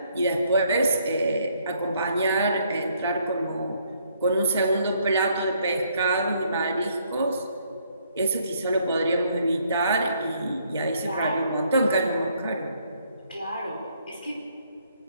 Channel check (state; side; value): inverted; both; correlation -0.68